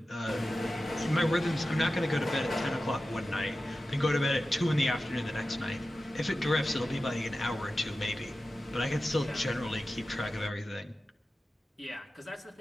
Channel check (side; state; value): both; normal; correlation 0.94